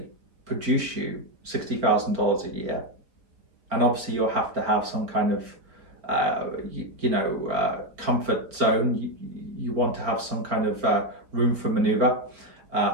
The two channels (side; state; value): left; late; 4.4 ms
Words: produce you $60,000 a year, and obviously you'll have to have some kind of comfort zone. You want to have some kind of room for maneuver.